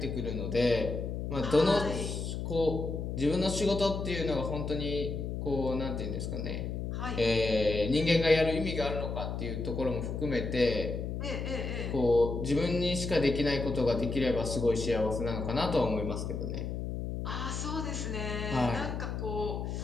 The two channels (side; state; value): left; noise; hum, 4 dB below the sound